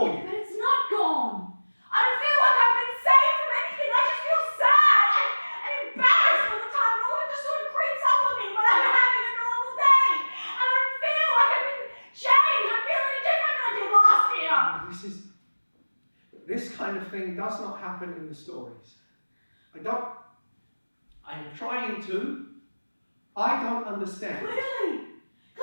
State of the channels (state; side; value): inverted; both; correlation -1.00